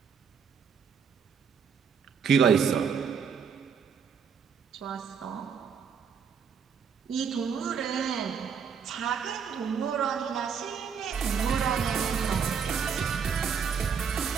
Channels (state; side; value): quieter; left; 6.6 dB